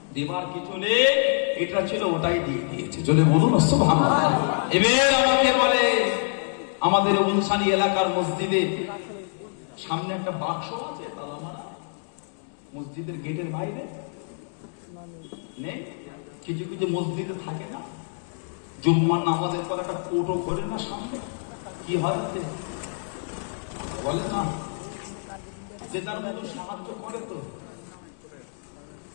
দেবার কিছু নেই, এটা ছিল ওটাই দিয়ে দিয়েছে। জোরে বলুন সুবহানাল্লাহ। এবার আমাকে বলে আমাদের উনসানি এলাকার মসজিদে সামনে একটা বাক্স আছে তালা মারা, মসজিদের গেটের বাইরে নেই? কিছু কিছু মসজিদে থাকে না, জুম্মার নামাজের পর একটা কোটো করে না সামনে, কি হয় বলে না, যে তার মতো সাহায্য করে। তো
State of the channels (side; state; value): right; silent; digital silence